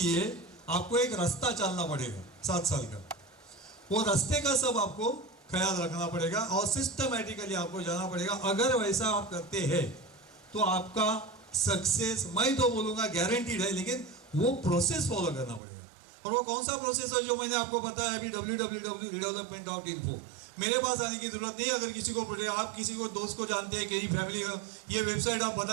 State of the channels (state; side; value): drops out; left; at 15.6 s